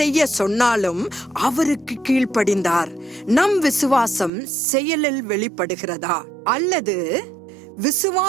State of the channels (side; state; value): left; drops out; at 4.3 s